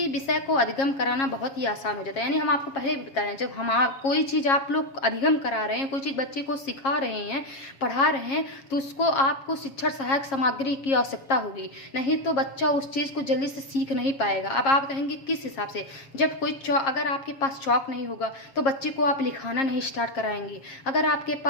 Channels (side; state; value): right; late; 7.4 ms